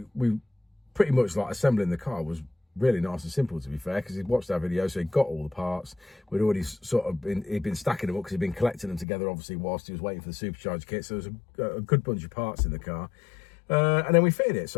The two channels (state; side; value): drops out; right; at 9.1 s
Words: we pretty much like assembling the car was really nice and simple, to be fair, because he'd watched our video, so he got all the parts. We'd already sort of he'd been stacking them up because he'd been collecting them together, obviously, whilst he was waiting for the supercharger kit. So there was a good bunch of parts in the car. And then we fitted it,